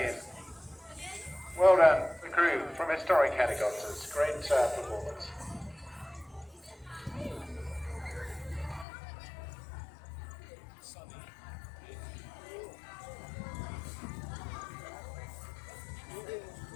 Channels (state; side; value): drops out; right; at 8.8 s